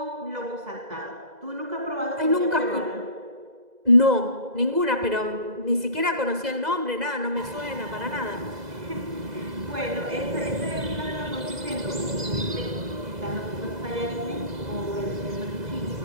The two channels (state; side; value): late; left; 2.0 ms